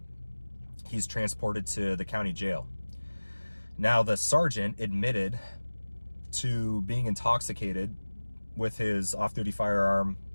he's transported to the county jail. Now, the sergeant admitted to being intoxicated with his off-duty firearm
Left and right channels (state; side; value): inverted; both; correlation -1.00